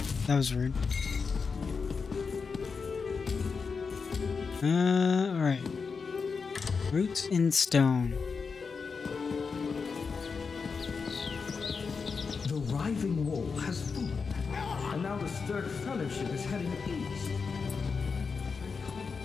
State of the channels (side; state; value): right; quieter; 5.2 dB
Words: That was rude. Alright. Roots in stone. The Riving Wall has fallen, and now the Stirred Fellowship is heading east.